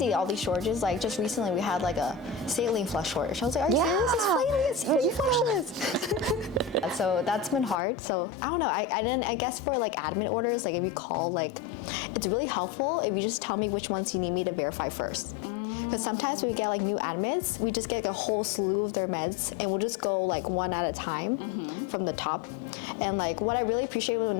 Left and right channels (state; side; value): drops out; right; at 7.8 s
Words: all these shortages. Like just recently we had like a saline flush shortage. I was like, are you serious? It's saline flushes. So that's been hard. So I don't know. I guess for like admin orders, like if you call, like it's really helpful if you just tell me which ones you need me to verify first. Because sometimes when we get like new admits, we just get like a whole slew of their meds, and we'll just go like one at a time from the top. And like what I really appreciate when